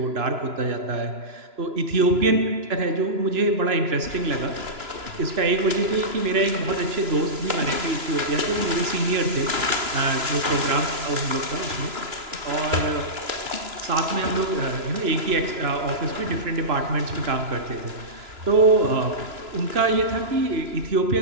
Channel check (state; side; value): late; left; 3.0 ms